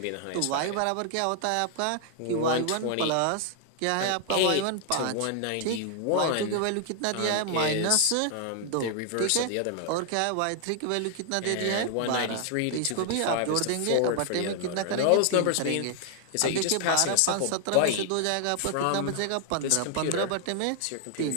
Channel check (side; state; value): both; different; correlation 0.00